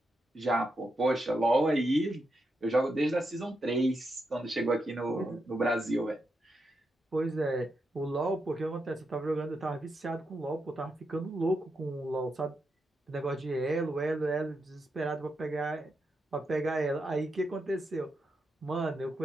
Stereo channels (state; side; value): normal; both; correlation 0.84